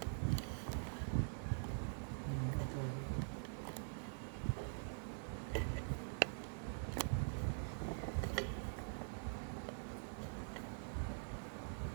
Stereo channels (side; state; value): left; silent; digital silence